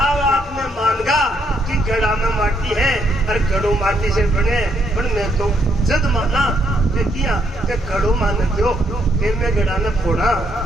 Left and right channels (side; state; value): both; normal; correlation 0.73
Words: अब आपने मानगा कि घड़ा में माटी है और घड़ो माटी से बने, पर मैं तो जद माना किया कि घड़ो मान दो, फिर मैं घड़ा ने फोड़ा,